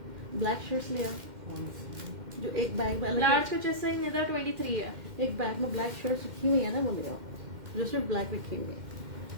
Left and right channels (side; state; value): left; late; 2.1 ms